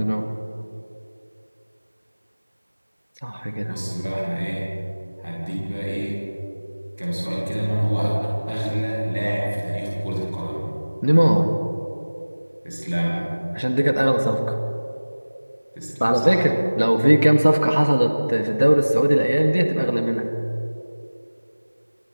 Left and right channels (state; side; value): inverted; both; correlation -1.00